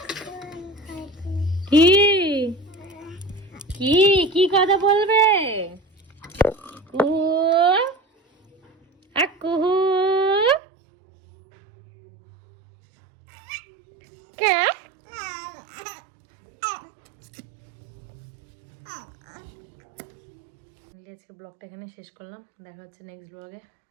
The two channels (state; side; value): drops out; left; at 10.6 s